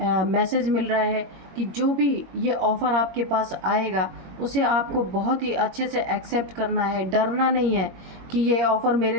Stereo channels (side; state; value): left; late; 21 ms